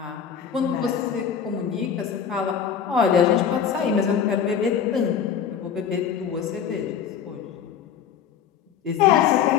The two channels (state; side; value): quieter; right; 7.9 dB